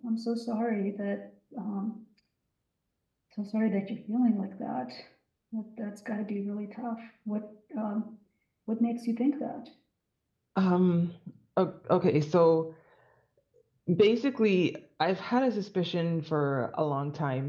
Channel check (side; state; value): both; identical; correlation 1.00